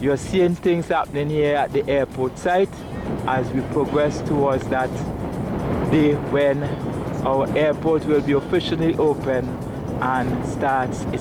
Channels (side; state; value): both; identical; correlation 1.00